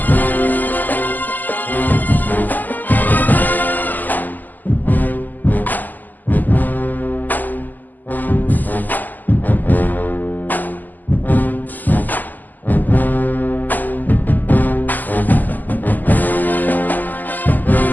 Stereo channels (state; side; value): late; right; 0.085 ms